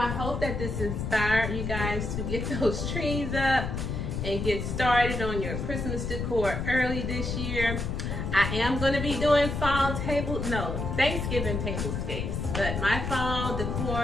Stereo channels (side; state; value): left; noise; rumble, 3 dB below the sound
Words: hope that this inspired you guys to get those trees up and get started on your Christmas decor early this year. I am going to be doing Thanksgiving tablescapes, but my fall